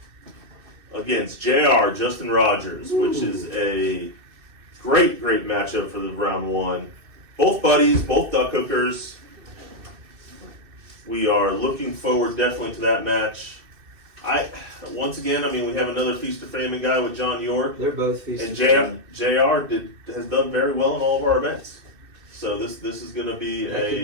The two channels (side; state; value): left; late; 2.6 ms